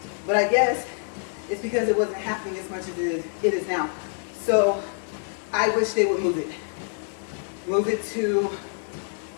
But I guess it's because it wasn't happening as much as it is now. So I wish they would move it. Move it to,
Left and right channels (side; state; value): right; silent; 61 dB below the other